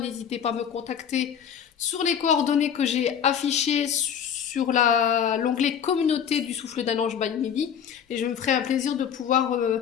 pas à me contacter sur les coordonnées que j'ai affichées sur l'onglet communauté du souffle d'un ange by Midi. Et je me ferai un plaisir de pouvoir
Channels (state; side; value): quieter; right; 8.3 dB